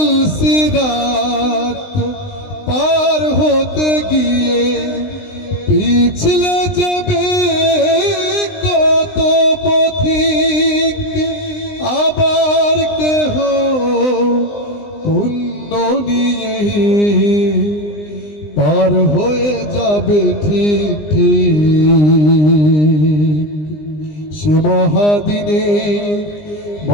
পুলসিরাত পার হতে গিয়ে পিছলে যাবে কত পথিক, আবার কেহ পুণ্য নিয়ে পার হয়ে যাবে ঠিক ঠিক। সে মহাদিনে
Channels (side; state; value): right; late; 20 ms